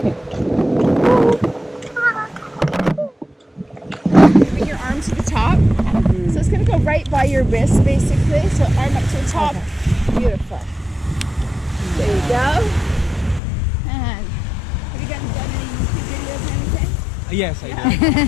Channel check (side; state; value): right; drops out; at 13.4 s